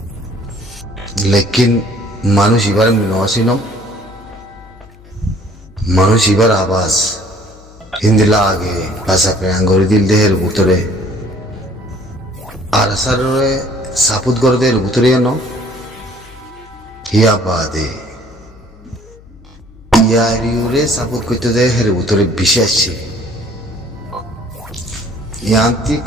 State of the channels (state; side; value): noise; left; hum, 23 dB below the sound